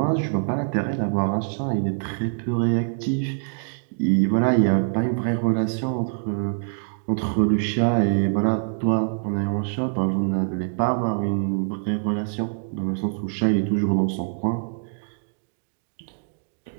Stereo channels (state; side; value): silent; left; digital silence